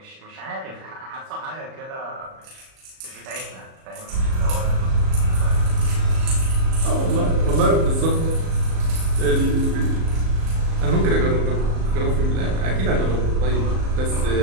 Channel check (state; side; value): late; left; 37 ms